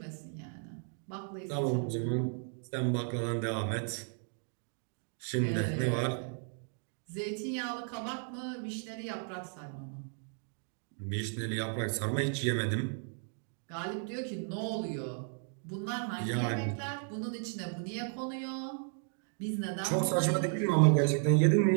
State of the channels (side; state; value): left; silent; 55 dB below the other